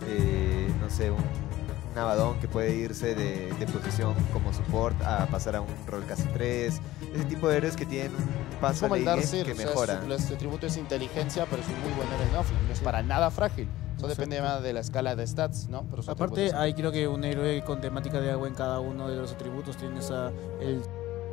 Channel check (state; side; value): quieter; right; 16.1 dB